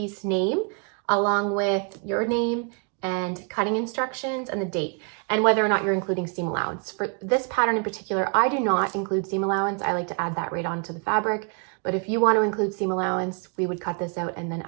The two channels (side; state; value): left; quieter; 39.7 dB